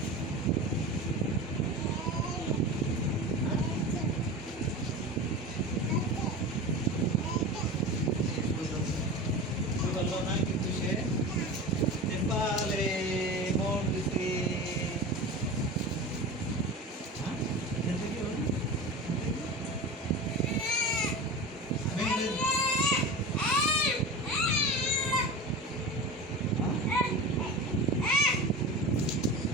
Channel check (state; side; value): normal; both; correlation 0.30